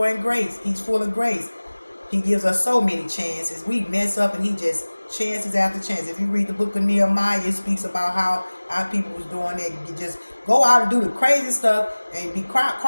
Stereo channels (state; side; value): inverted; both; correlation -1.00